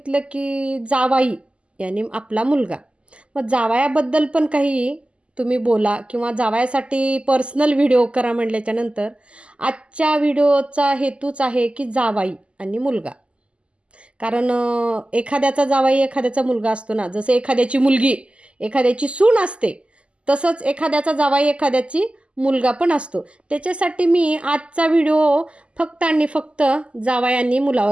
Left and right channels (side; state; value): left; late; 0.055 ms